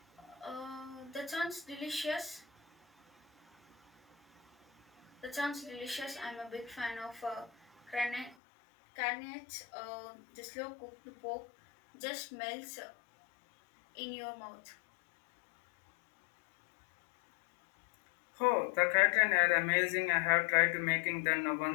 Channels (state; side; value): drops out; right; at 8.3 s